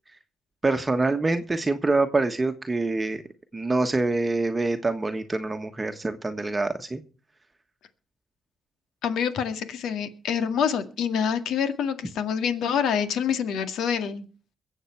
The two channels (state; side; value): normal; both; correlation 0.78